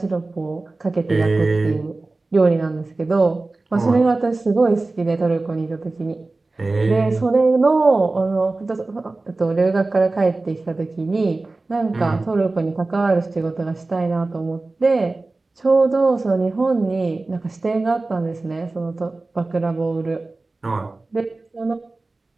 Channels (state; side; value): quieter; left; 3.3 dB